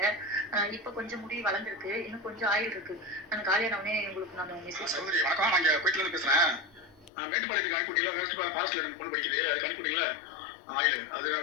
இப்போ கொஞ்சம் முடி வளர்ந்துருக்கு. இன்னும் கொஞ்சம் ஆயில் இருக்கு. நான் காலியானவனே உங்களுக்கு நான் மெசேஜ் சகோதரி வணக்கம். நான் இங்கே கோயிலேருந்து பேசுகிறேன். மேட்டுப்பாளையத்துக்கு அனுப்பிட்டீங்களா? வெஸ்ட் ஃபாரஸ்ட்டில் எனக்கு பொண்ணு படிக்குது. அதுக்கு அனுப்பிட்டீங்களா ஆயில்? அது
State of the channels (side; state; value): right; drops out; at 7.1 s